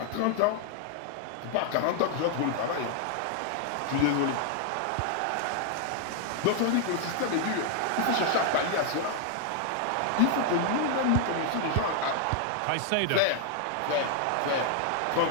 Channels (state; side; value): different; both; correlation 0.00